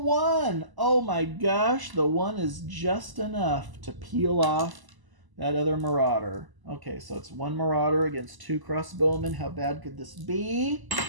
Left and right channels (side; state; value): left; late; 1.0 ms